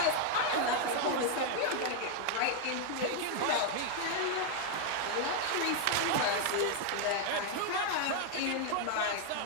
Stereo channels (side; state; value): both; different; correlation 0.00